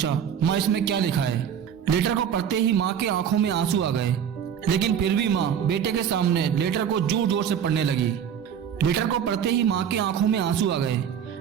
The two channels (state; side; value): quieter; left; 8.4 dB